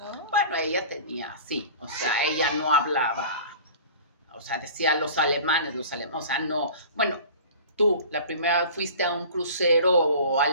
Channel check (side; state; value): both; inverted; correlation -0.41